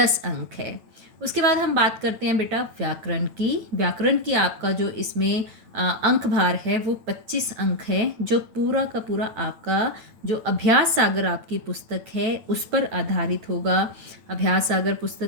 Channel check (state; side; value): late; left; 9.1 ms